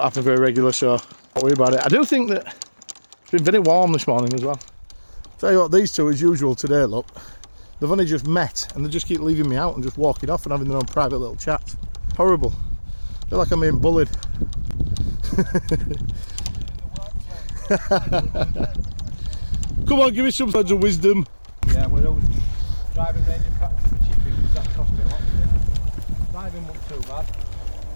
happen very regular, so don't worry about it. I do think that it's been very warm this morning as well. Tell you what, these two as usual today, look, they've only just met and they just keep leaving me out and just walking off and having their own private little chat. Horrible. I feel like I'm being bullied. Come on, give me some words of wisdom. Yeah, we're always driving range in practice for chipping, because that cost me a lot today. Driving wasn't too bad.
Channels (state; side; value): inverted; both; correlation -1.00